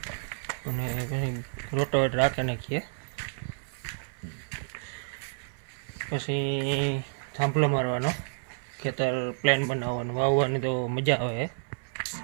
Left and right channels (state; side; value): silent; left; 58 dB below the other